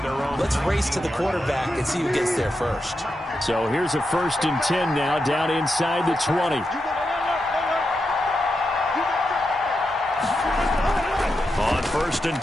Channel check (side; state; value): both; normal; correlation 0.87